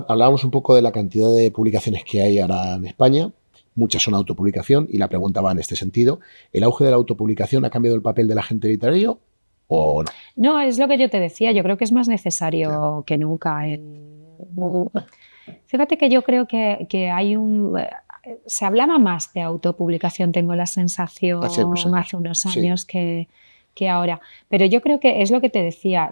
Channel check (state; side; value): inverted; both; correlation -1.00